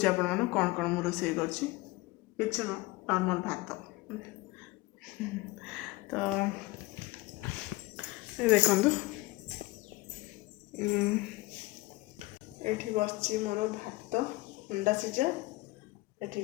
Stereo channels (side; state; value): right; quieter; 21.4 dB